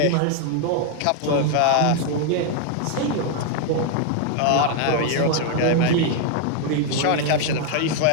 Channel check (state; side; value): different; both; correlation 0.00